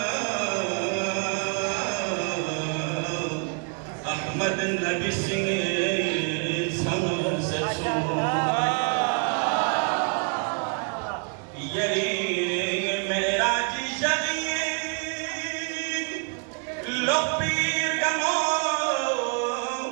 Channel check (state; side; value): quieter; left; 38.5 dB